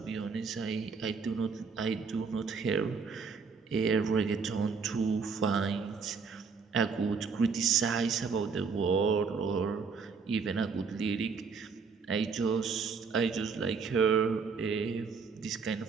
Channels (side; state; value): left; quieter; 5.3 dB